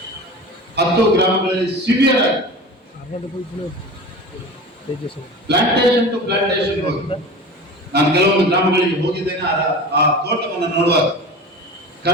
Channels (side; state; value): both; normal; correlation 0.34